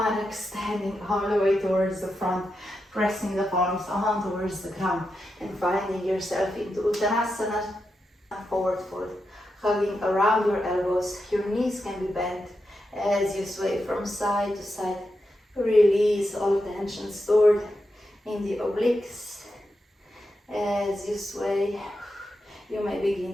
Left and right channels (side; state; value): both; normal; correlation 0.87